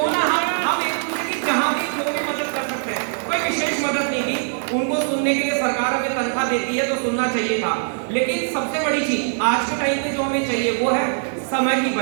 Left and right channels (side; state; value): left; silent; digital silence